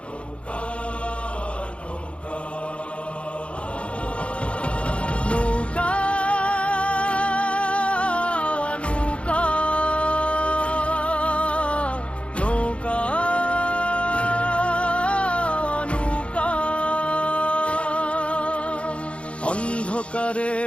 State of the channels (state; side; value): late; right; 0.060 ms